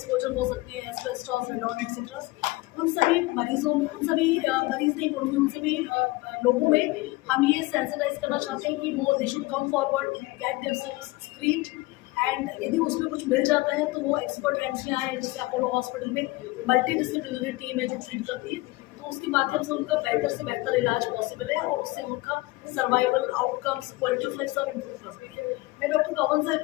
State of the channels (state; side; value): quieter; right; 21.2 dB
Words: हो सकते हैं, एस्बेस्टॉस, रेडॉन एक्सेट्रा, उन सभी मरीजों में, उन सभी मरीज नहीं बोलूँगी, उन सभी लोगों में हम ये सेंसिटाइज करना चाहते हैं कि वो they should come forward, get themselves screened, and यदि उसमें कुछ मिल जाता है तो वो एक्सपर्ट एजेंसियाँ हैं, जैसे अपोलो हॉस्पिटल में मल्टी डिसिप्लिनरी टीम है जो ट्रीट करती है, तो उसके माध्यम से उनका बेहतर से बेहतर इलाज पॉसिबल है और उससे उनका survival outcomes, quality of life सब इम्प्रूव कर सकते हैं। मैं डॉक्टर कंवल से